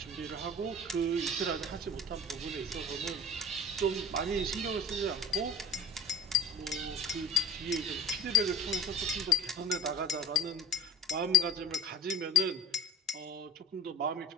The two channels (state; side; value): normal; both; correlation 0.35